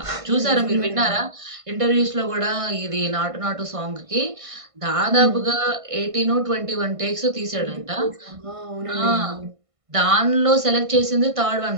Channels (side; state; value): left; late; 1.5 ms